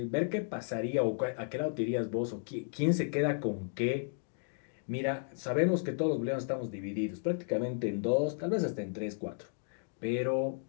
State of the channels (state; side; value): silent; right; digital silence